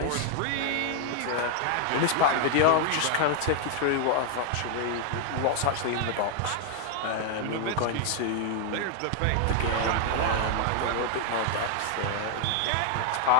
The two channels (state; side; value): different; both; correlation 0.00